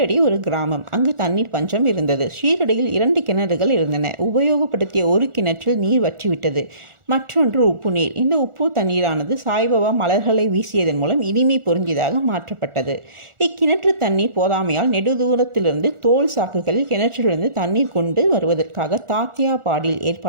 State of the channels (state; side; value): late; left; 1.4 ms